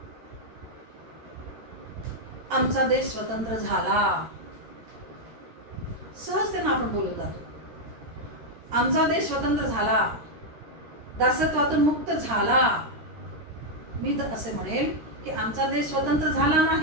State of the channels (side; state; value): left; late; 13 ms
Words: आमचा देश स्वतंत्र झाला. सहजतेनं आपण बोलत जातो. आमचा देश स्वतंत्र झाला, दासत्वातून मुक्त झाला. मी तर असे म्हणेल की आमचा देश स्वतंत्र झाला